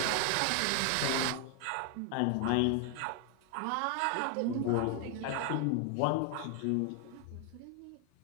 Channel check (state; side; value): different; both; correlation 0.00